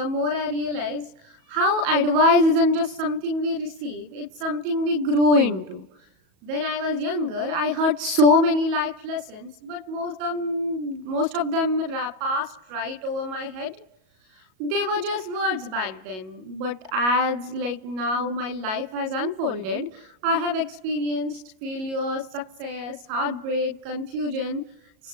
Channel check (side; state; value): left; late; 37 ms